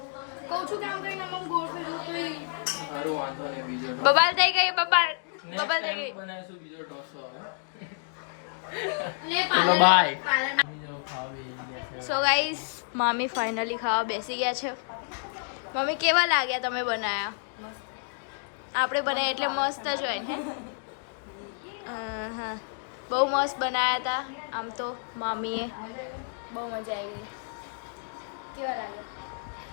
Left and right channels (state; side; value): silent; right; digital silence